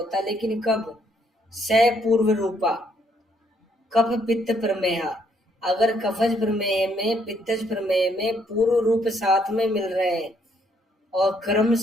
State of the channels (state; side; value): normal; both; correlation 0.70